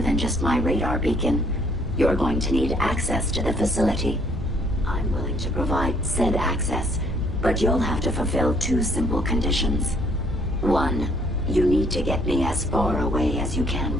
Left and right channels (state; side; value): normal; both; correlation 0.64